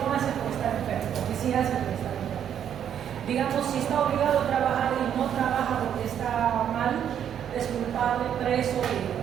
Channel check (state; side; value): quieter; left; 9.2 dB